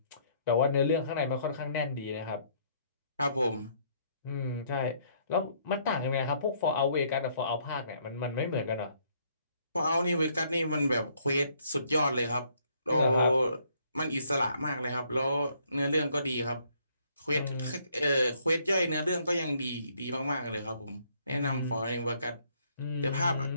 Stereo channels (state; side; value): inverted; both; correlation -0.67